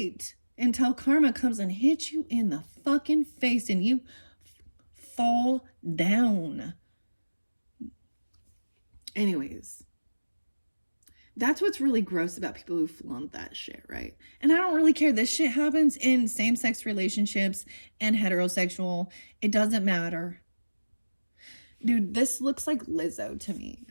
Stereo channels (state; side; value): inverted; both; correlation -1.00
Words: until karma comes and hits you in the fucking face and you fall down. Anyways, that's what's really gross about people who flaunt that shit, right? And I don't really care. This shit happens in same-sex relationships and heterosexual. It doesn't matter. Dude, this looks like Lizzo to me.